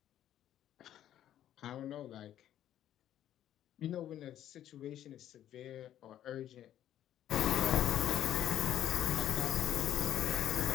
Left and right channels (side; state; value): right; quieter; 11.6 dB